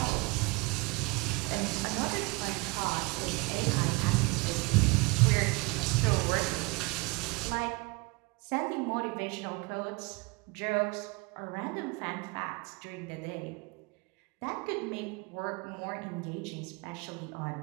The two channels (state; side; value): quieter; left; 26.3 dB